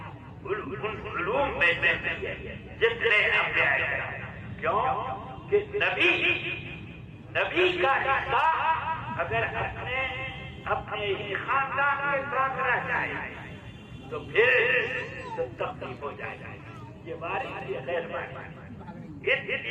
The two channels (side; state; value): both; identical; correlation 1.00